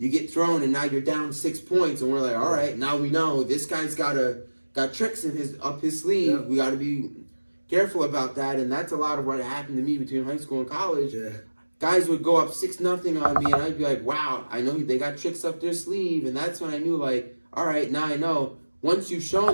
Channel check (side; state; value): both; inverted; correlation -1.00